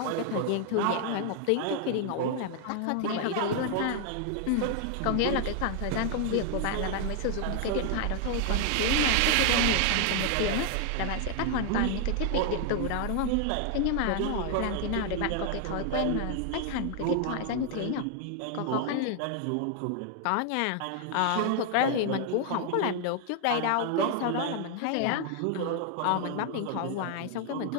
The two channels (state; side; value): different; both; correlation 0.00